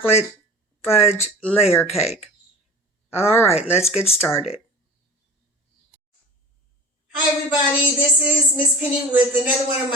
fudge layer cake. All right, let's get started. Hi everybody, this is Miss Penny with another one of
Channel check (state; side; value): normal; both; correlation 0.38